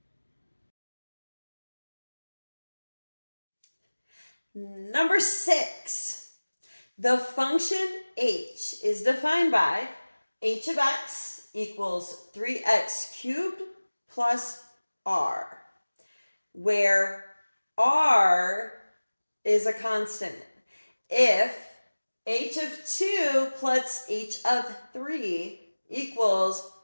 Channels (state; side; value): inverted; both; correlation -1.00